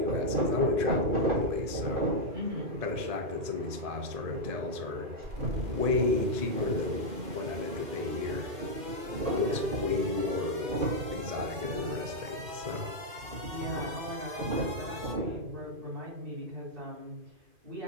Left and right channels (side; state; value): left; late; 2.5 ms